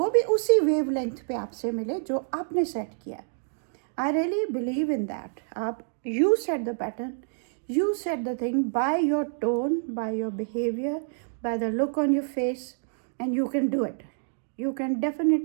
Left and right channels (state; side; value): silent; left; digital silence